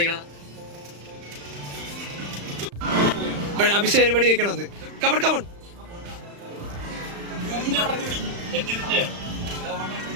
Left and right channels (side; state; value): left; late; 35 ms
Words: അഭിഷേക് വെടി വെക്കണമെന്ന്. കമൺ